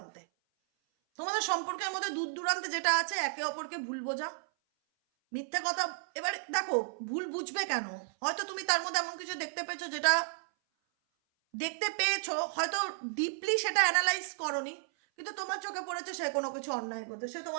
তোমাদের সম্পর্কের মধ্যে দূর দূরান্তে যেটা আছে, একে অপরকে ভুল বোঝা, মিথ্যা কথা। এবার দেখো ভুল বুঝবে কেন? হয়তো তুমি তার মধ্যে এমন কিছু দেখতে পেয়েছো, হয়তো ডিপলি সেটা অ্যানালাইজ করনি, কিন্তু তোমার চোখে পড়েছে সে কোনো কিছু অন্যায় করছে, সে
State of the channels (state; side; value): silent; left; 56 dB below the other